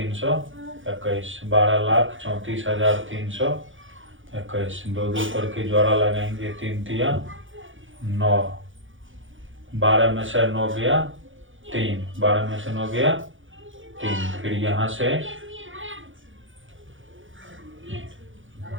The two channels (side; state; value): left; late; 0.57 ms